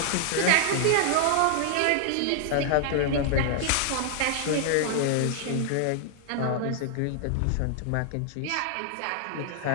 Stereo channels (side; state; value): both; different; correlation 0.00